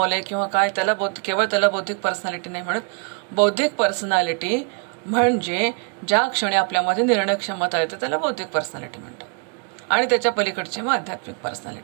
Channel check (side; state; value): left; quieter; 37.4 dB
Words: किंवा काय, त्याला केवळ त्याला बौद्धिक पर्सनॅलिटी नाही म्हणत. बौद्धिक पर्सनॅलिटी म्हणजे ज्या क्षणी आपल्यामध्ये निर्णय क्षमता येते त्याला बौद्धिक पर्सनॅलिटी म्हणतात. आणि त्याच्या पलीकडचे मग आध्यात्मिक